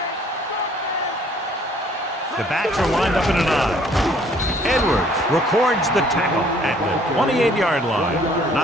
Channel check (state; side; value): normal; both; correlation 0.59